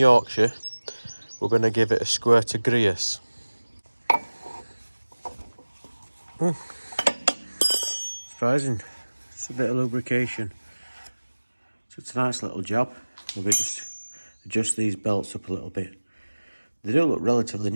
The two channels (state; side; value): inverted; both; correlation -1.00